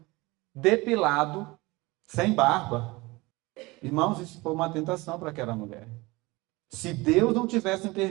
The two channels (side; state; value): left; quieter; 22.7 dB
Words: depilado, sem barba. Irmãos, isso foi uma tentação para aquela mulher. Se Deus não tivesse